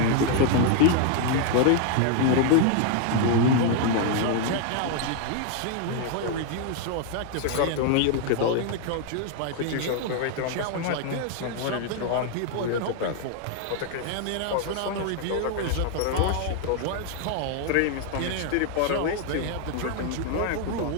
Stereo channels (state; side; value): different; both; correlation 0.00